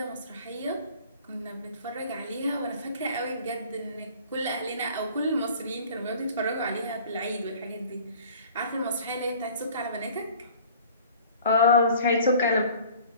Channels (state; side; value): inverted; both; correlation -0.48